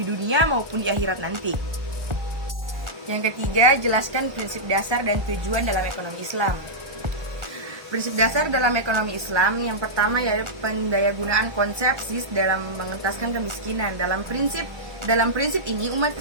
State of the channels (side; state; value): left; late; 1.4 ms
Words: dunia maupun di akhirat nanti. Yang ketiga, jelaskan prinsip dasar dan tujuan dalam ekonomi Islam. Prinsip dasar dalam ekonomi Islam yang pertama yaitu pendayagunaan konsep SIS dalam mengentaskan kemiskinan. Dalam prinsip ini umat